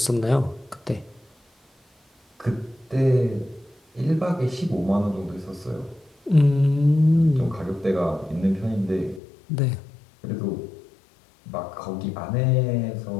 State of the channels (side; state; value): right; drops out; at 9.2 s